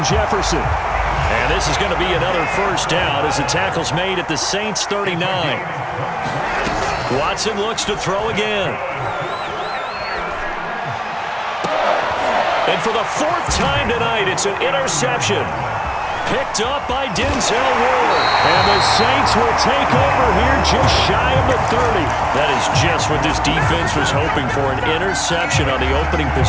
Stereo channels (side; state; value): both; identical; correlation 1.00